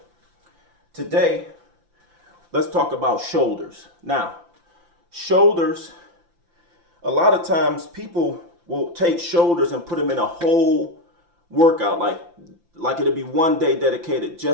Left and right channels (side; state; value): left; late; 5.8 ms